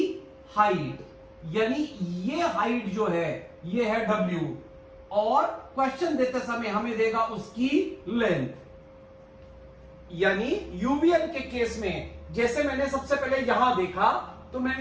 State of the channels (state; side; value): identical; both; correlation 1.00